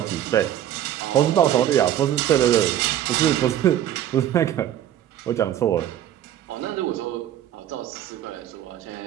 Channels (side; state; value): left; quieter; 11.4 dB